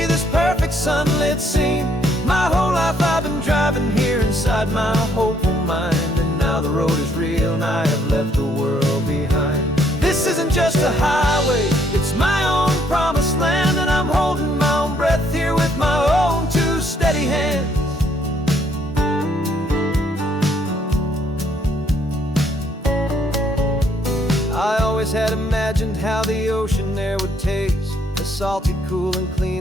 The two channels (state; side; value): normal; both; correlation 0.68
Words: this perfect sunlit scene. My whole life I've been driving here inside my hopeful mind, and now the road is real and I have left the world behind. This isn't just a highway, it's my own promised land, and I'm holding my own breath here with my own two steady hands. always had imagined how the ocean air would taste, a salty, cool and